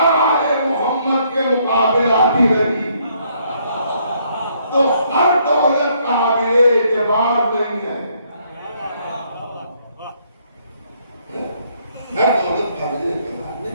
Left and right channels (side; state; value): both; inverted; correlation -0.69